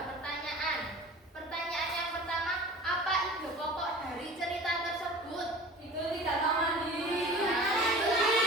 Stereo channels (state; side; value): normal; both; correlation 0.40